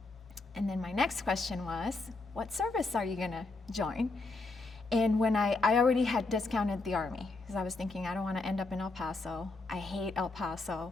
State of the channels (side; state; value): right; quieter; 3.5 dB